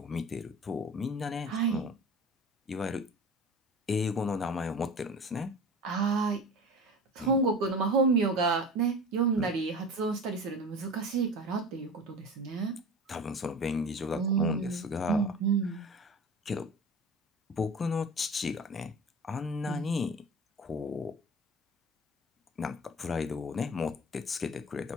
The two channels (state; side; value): normal; both; correlation 0.35